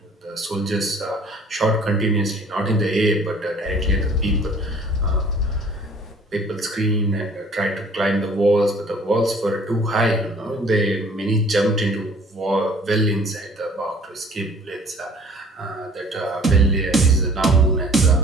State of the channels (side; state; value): both; normal; correlation 0.53